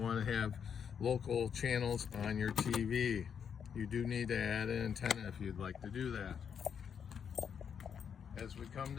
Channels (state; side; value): quieter; right; 7.4 dB